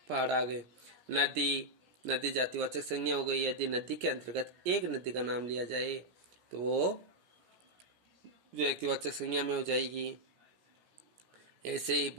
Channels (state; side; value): late; left; 17 ms